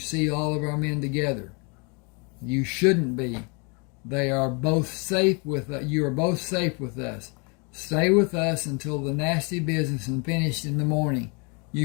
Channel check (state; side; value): quieter; right; 33.3 dB